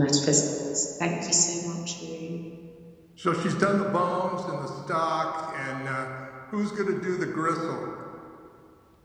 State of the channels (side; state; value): both; identical; correlation 1.00